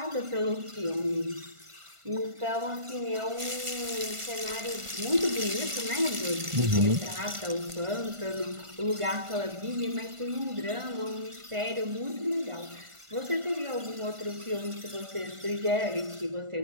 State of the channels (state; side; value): late; left; 1.5 ms